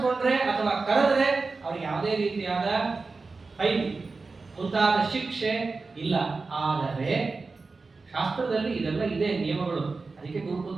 ಅಥವಾ ಕರೆದ್ರೆ ಅವ್ರಿಗೆ ಯಾವುದೇ ರೀತಿಯಾದ ಫೈನ್ ಮುಂತಾದ ಶಿಕ್ಷೆ ಇಲ್ಲ. ಆದರೆ ಶಾಸ್ತ್ರದಲ್ಲಿ ಇದೆಲ್ಲ ಇದೆ ನಿಯಮಗಳು. ಅದಕ್ಕೆ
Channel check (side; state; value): left; quieter; 4.0 dB